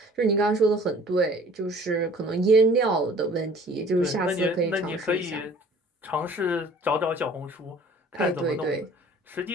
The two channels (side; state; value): both; normal; correlation 0.50